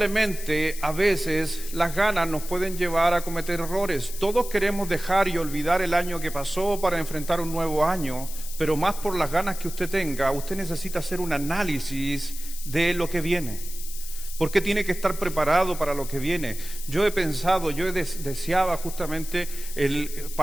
a veces las ganas nos pueden llevar a cometer errores. Todos queremos dejar y olvidar el año que pasó para enfrentar un nuevo año, pero más por las ganas que usted tenga, usted necesita hacer un análisis de lo que viene. Porque tiene que estar preparado para lo que viene. Yo he pensado, deseaba justamente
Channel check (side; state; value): left; noise; hiss, 11 dB below the sound